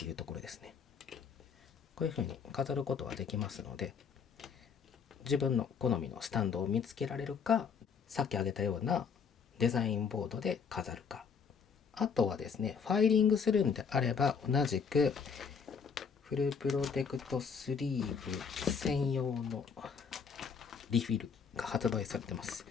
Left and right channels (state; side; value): quieter; right; 6.2 dB